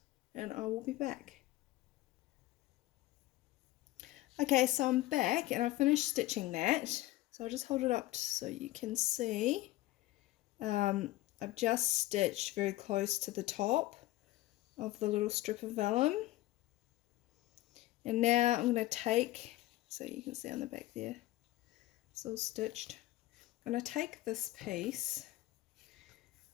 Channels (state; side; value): quieter; right; 17.0 dB